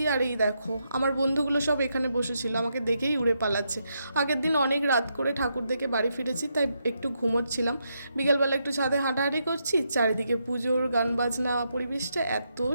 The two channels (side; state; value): both; inverted; correlation -0.81